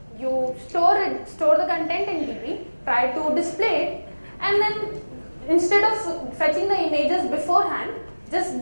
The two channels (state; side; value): inverted; both; correlation -1.00